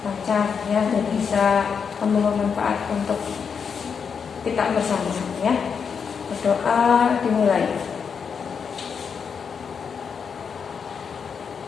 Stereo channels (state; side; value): quieter; right; 6.4 dB